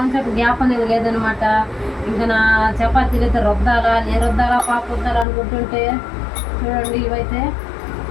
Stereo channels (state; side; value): drops out; right; at 5.2 s